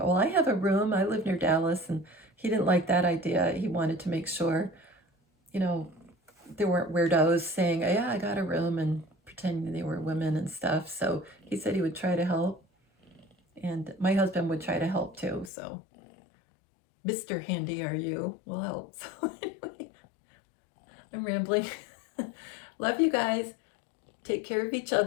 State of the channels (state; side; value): drops out; right; at 15.5 s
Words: I have a room, I live near Dallas, and he didn't like that idea. He wanted to make sure, you know, there weren't weirdos saying, oh, yeah, I got a room, and pretending they were women and stuff. So he said he would try to help, and my husband would try to help too. So Mr. Handy Are You will help. So anyway, I'm rambling. Love you guys. Take care of each